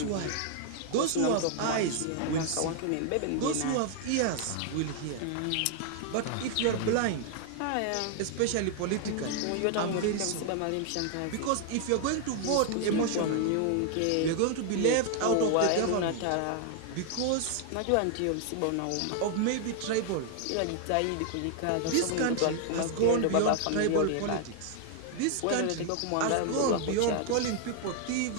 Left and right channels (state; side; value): different; both; correlation 0.00